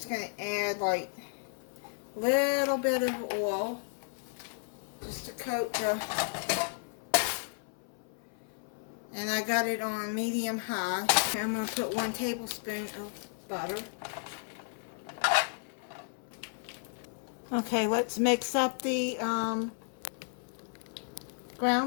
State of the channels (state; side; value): silent; right; 56 dB below the other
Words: going to add like a little bit of oil just to coat the, and I got it on medium high. I'm going to put 1 tablespoon of butter. Okay, let's mix up the